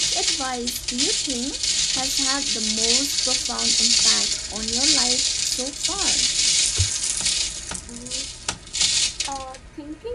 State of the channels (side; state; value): both; identical; correlation 1.00